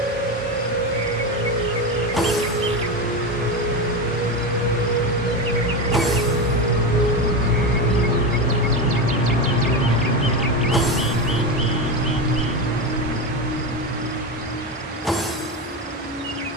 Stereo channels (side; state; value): both; normal; correlation 0.16